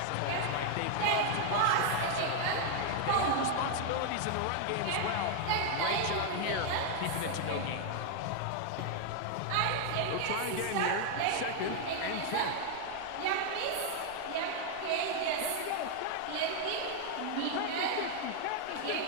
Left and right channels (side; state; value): both; different; correlation 0.00